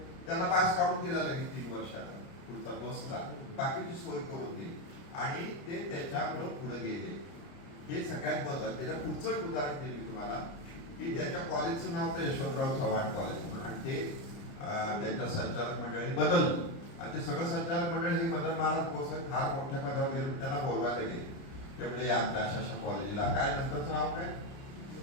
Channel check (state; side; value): late; right; 29 ms